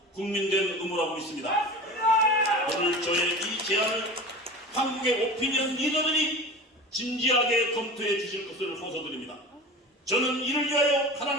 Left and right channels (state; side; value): normal; both; correlation 0.34